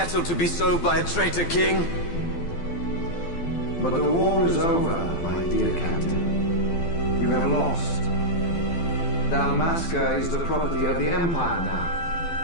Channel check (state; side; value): late; right; 12 ms